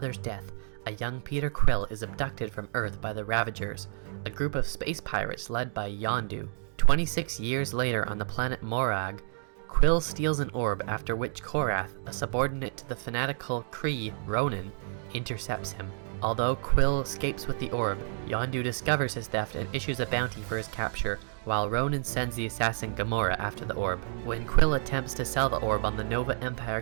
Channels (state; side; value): silent; left; digital silence